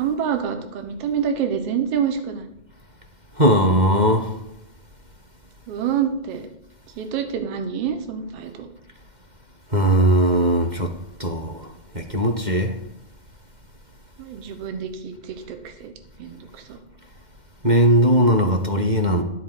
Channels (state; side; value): late; left; 2.1 ms